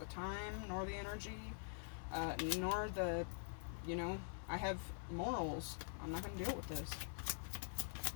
time, nor the energy, nor the, you know, I have morals. I'm not going to deal with this.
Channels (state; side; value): silent; right; digital silence